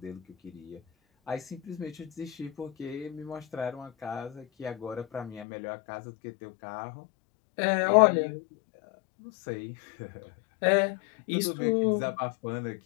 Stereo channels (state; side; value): drops out; right; at 5.5 s